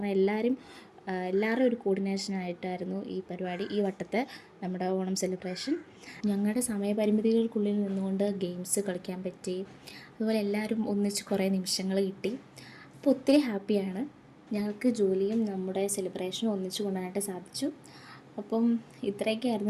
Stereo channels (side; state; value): both; identical; correlation 1.00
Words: എല്ലാവരും ഒരു കോർഡിനേഷനായിട്ടായിരുന്നു ഈ പരിപാടി, ഈ വട്ടത്തെ നമ്മുടെ ഓണം സെലിബ്രേഷൻ. ഞങ്ങളുടെ സമയപരിമിതികൾക്കുള്ളിൽ നിന്നുകൊണ്ട് ഗെയിംസ് കളിക്കാൻ പറ്റി. അതുപോലെ എല്ലാവരും ഒന്നിച്ച് കുറേ നിമിഷങ്ങൾ കിട്ടി. അപ്പോൾ ഒത്തിരി ഹാപ്പിയാണ്. ഞങ്ങൾക്ക് ജോലിയും നമ്മുടെ സെലിബ്രേഷനും ഒന്നിച്ച് കൊണ്ടുവരാനായിട്ട് സാധിച്ചു. അപ്പം